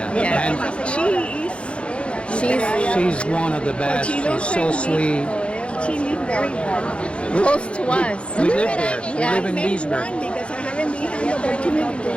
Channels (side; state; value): right; late; 0.059 ms